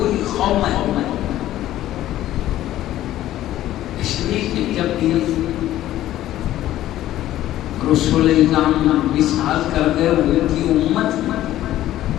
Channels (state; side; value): quieter; right; 13.7 dB